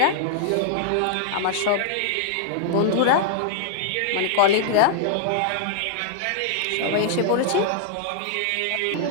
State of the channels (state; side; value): different; both; correlation -0.01